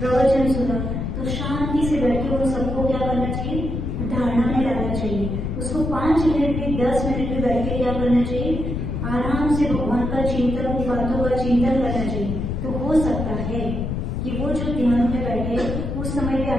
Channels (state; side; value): noise; left; rumble, 3 dB below the sound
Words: सुना, तो शांति से बैठ के उन सबको क्या करना चाहिए, धारणा में लाना चाहिए। उसको 5 मिनट भी 10 मिनट भी बैठ के क्या करना चाहिए, आराम से भगवान का चिंतन, उन बातों का चिंतन करना चाहिए। तो हो सकता है कि वो जो ध्यान में बैठे उस समय पे